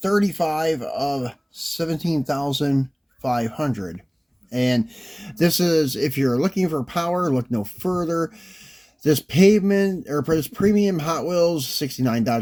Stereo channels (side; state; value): both; identical; correlation 1.00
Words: of 17,500. And this is, if you're looking for power, look no further. This premium Hot Wheels 69